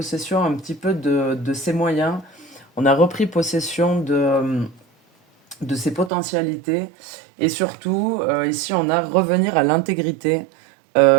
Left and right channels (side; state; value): left; drops out; at 6.1 s